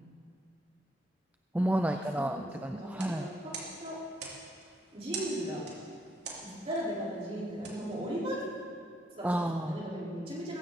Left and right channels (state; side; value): normal; both; correlation 0.74